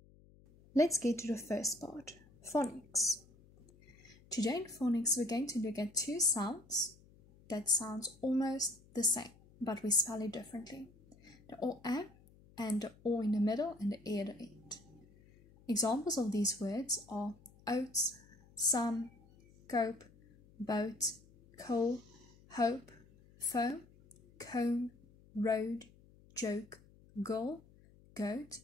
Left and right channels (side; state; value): left; noise; hum, 26 dB below the sound